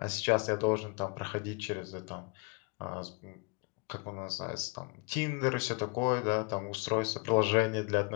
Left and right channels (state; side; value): quieter; right; 30.6 dB